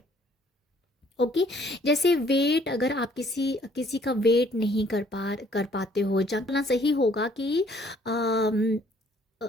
ओके, जैसे वेट, अगर आप किसी किसी का वेट नहीं कर पाते हो, जानना सही होगा कि अम, अ,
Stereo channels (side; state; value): both; normal; correlation 0.61